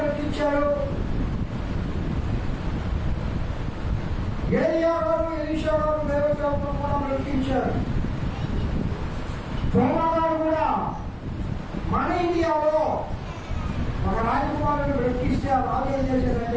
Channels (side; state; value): both; identical; correlation 1.00